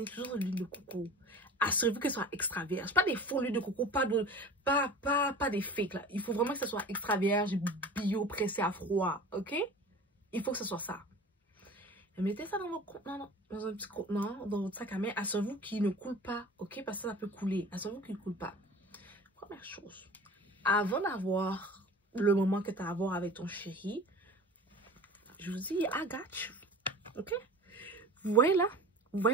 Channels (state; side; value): normal; both; correlation 0.39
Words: toujours de l'huile de coco. Assurez-vous que ce soit extra vierge. Pas des faux huiles de coco, pas des fakes là. Il faut vraiment que ce soit extra vierge, bio, pressé à froid, ok? Il faut que ce soit ça. Mettez ça dans votre contenant, dans un petit contenant, dans votre sac à main. Assurez-vous qu'il ne coule pas, ok? Parce que ça peut couler. Assurez-vous qu'il ne coule pas. Première chose, avant d'avoir le moment que tu as à avoir avec ton chéri, je vous dis, I got you, ok? Vous voyez là? Vous